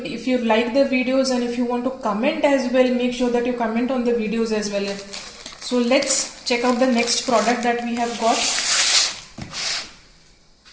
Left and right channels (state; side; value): identical; both; correlation 1.00